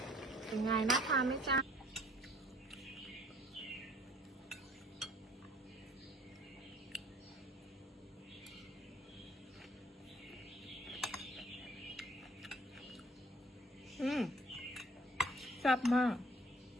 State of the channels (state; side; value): normal; both; correlation 0.56